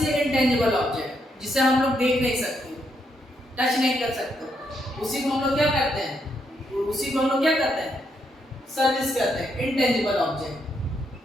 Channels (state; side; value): normal; both; correlation 0.77